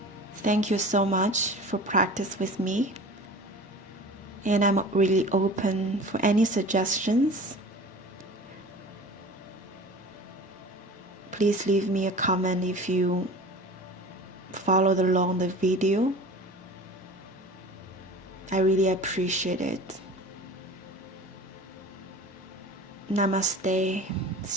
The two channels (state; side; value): normal; both; correlation 0.39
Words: Thank you so much for practice with me, and I'm really open for any suggestions. Please leave me a comment if you followed along the video. I really appreciate it. Namaste.